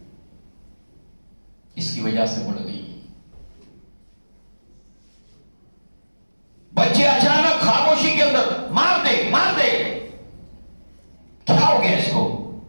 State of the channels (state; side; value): inverted; both; correlation -1.00